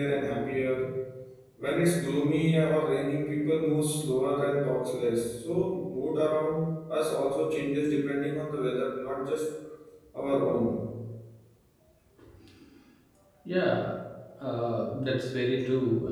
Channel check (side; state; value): both; identical; correlation 1.00